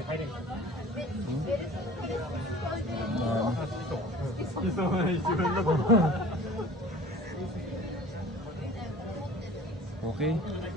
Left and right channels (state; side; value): normal; both; correlation 0.45